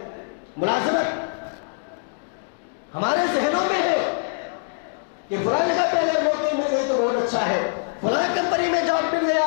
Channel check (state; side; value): silent; right; digital silence